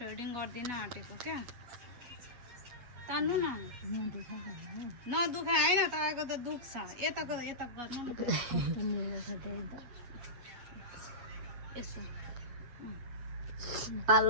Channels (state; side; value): late; left; 8.2 ms